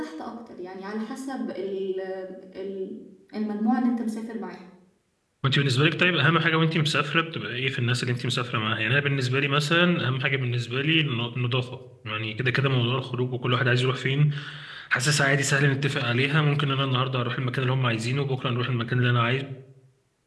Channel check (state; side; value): identical; both; correlation 1.00